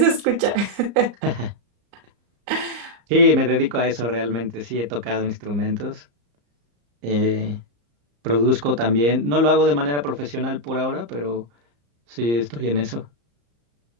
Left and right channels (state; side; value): late; left; 34 ms